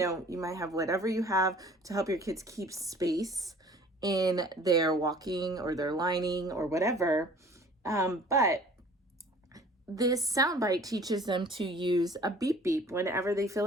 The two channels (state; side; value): normal; both; correlation 0.50